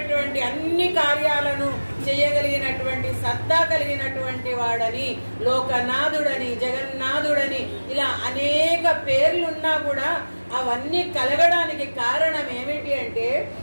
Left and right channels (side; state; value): both; inverted; correlation -1.00